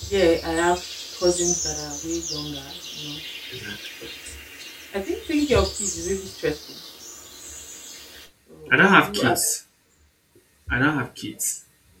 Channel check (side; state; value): both; identical; correlation 1.00